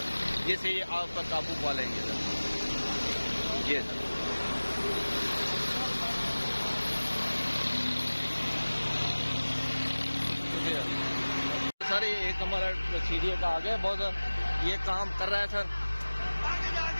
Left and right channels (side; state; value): both; inverted; correlation -1.00